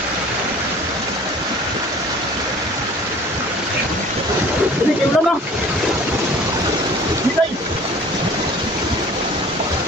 Jadi kayak ulang lah. Nilai.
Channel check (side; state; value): both; normal; correlation 0.47